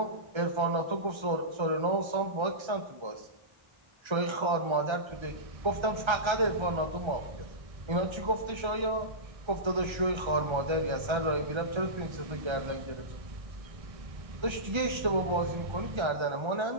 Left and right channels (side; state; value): left; late; 1.3 ms